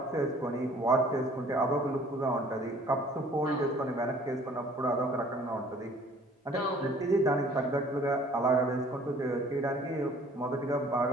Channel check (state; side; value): normal; both; correlation 0.54